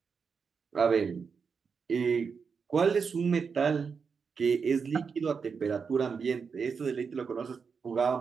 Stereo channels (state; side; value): quieter; left; 5.7 dB